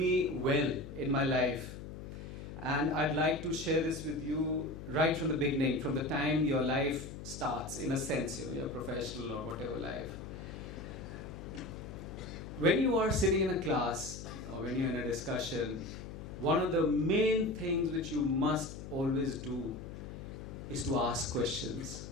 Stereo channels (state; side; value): noise; left; hum, 10 dB below the sound